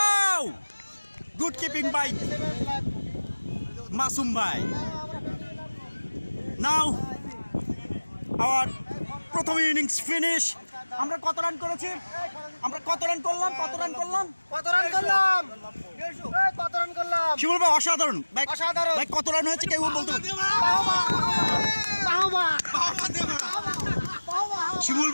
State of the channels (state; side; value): inverted; both; correlation -1.00